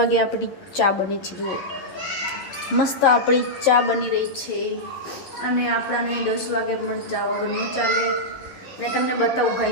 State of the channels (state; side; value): late; right; 11 ms